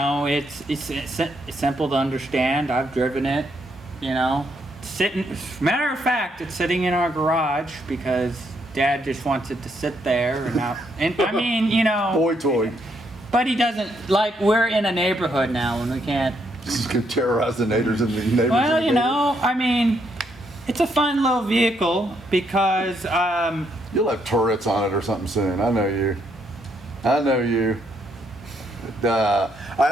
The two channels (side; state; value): both; normal; correlation 0.75